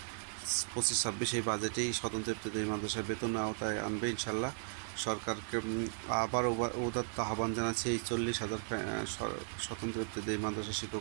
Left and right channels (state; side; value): silent; left; 54 dB below the other